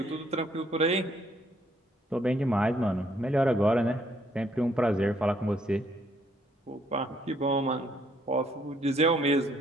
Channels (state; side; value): normal; both; correlation 0.68